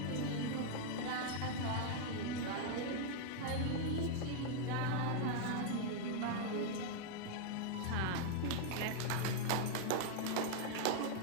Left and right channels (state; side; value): different; both; correlation -0.01